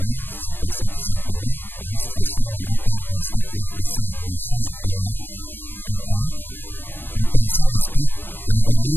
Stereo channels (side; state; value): right; late; 0.097 ms